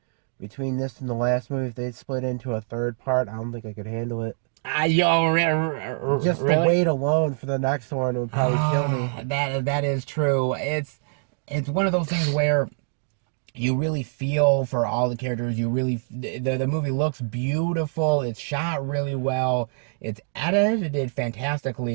between this and the last movie, if they'd split into a third part, I don't think I could handle it. Just really? the wait alone for the next one would probably kill me. That is true. It's one of those things where you really feel for all the characters. You really the movie looks beautiful. It's shot really well. It's edited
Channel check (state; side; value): silent; left; digital silence